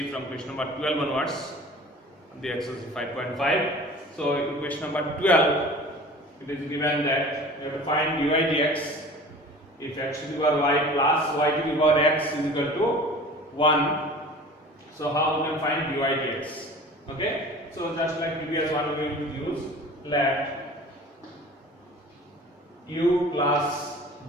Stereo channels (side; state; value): both; normal; correlation 0.42